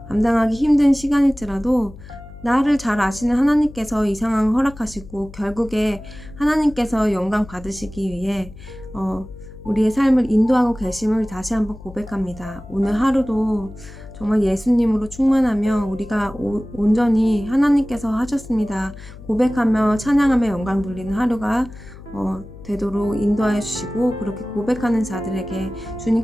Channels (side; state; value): left; noise; hum, 17 dB below the sound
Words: 감당하기 힘든 시간일지라도 나를 잘 아시는 하나님께서 이 상황을 허락하시고 결국에 하나님께서 영광 받으시기 위해 우리의 삶을 인도하고 계심을 다시 한번 고백합니다. 오늘 하루도 정말 예수님으로 충만하며 우리가 온전히 하나님께서 하셨습니다 고백하며 찬양하며 영광 돌리는 하루가 되도록 인도하여 주시고, 그렇게 고백하는 자들에게